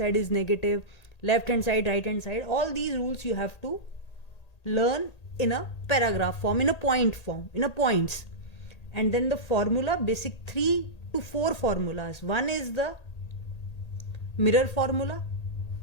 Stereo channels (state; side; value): late; right; 1.8 ms